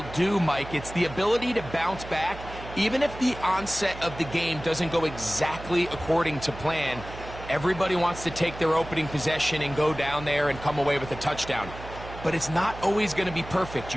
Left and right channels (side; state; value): right; noise; hum, 13 dB below the sound